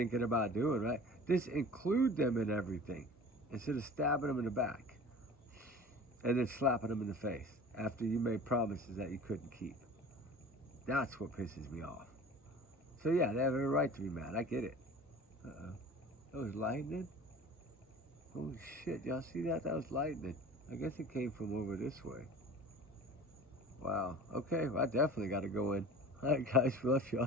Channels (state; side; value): normal; both; correlation 0.40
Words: about doing, right? Just include them in everything instead of stabbing them in the back and then slapping them in the face after you made promises that you couldn't keep. That's what pisses me off. So yeah, they have every right to be mad. I get it. That was lightning? Holy shit, y'all see that? That was lightning. I guess it came from over this way. Wow. Okay, well, I definitely got to go in. All right, guys, love